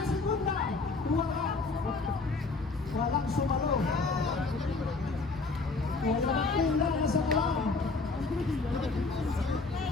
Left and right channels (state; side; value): quieter; right; 3.8 dB